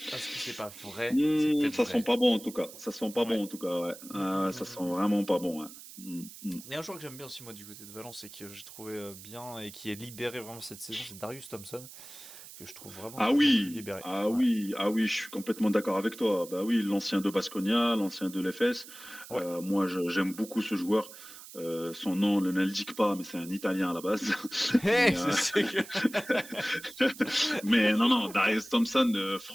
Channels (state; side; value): noise; right; hiss, 16 dB below the sound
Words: Est-ce que c'est pas vrai? C'est peut-être Ça sent vrai. pas bon en tout cas. Ça sent pas Ouais. bon en tout cas, ouais. Mm, mm, Ça mm, sent mm. vraiment pas bon, ouais. Mm, mm. Il y a un joueur que j'aime bien aussi moi du côté de Valence et que j'ai trouvé bien et qui est libéré vraiment cette saison, c'est Darius Thompson, que je trouve vraiment de Ah plus en plus oui, libéré. ah Ouais. oui, ah oui, je suis complètement d'accord avec toi. Bah oui, l'ancien de Baskonia, l'ancien de l'EFS. Ouais. Moi, j'aime beaucoup ce joueur. Son nom ne l'indique pas, mais c'est un Italien à la base. Hey, Mais, je sais que... mais non, Darius Thompson,